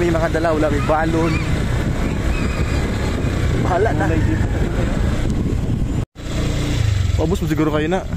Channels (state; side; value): identical; both; correlation 1.00